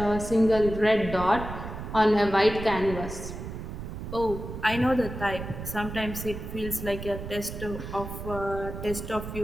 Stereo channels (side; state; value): right; noise; rumble, 8 dB below the sound